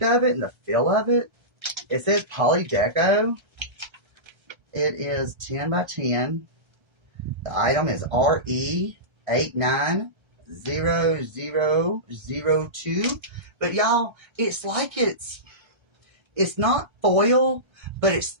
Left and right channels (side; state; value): left; late; 1.3 ms